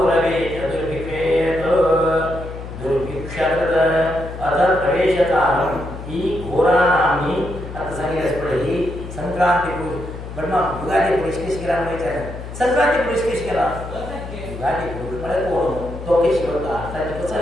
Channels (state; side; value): noise; left; hum, 10 dB below the sound